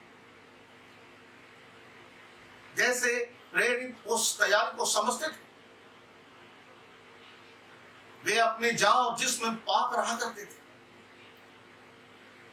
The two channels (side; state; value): both; identical; correlation 1.00